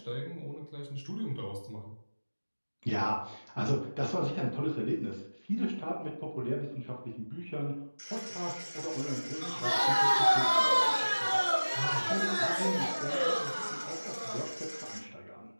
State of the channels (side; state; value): both; inverted; correlation -1.00